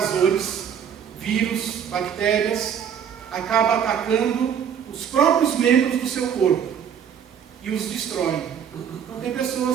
vírus, bactérias, acaba atacando os próprios membros do seu corpo e os destrói. Então, tem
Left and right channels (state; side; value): quieter; left; 8.1 dB